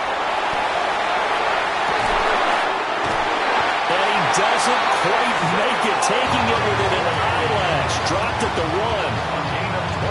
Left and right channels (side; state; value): both; identical; correlation 1.00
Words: And he doesn't quite make it, taking it within an eyelash. Dropped at the 1.